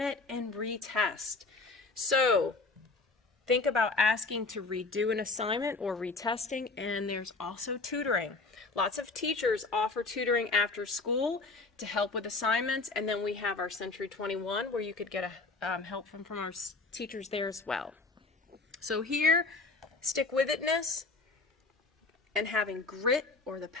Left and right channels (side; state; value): right; quieter; 3.7 dB